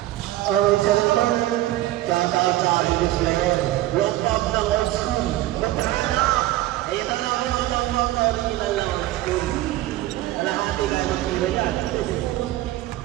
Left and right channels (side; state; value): left; quieter; 15.7 dB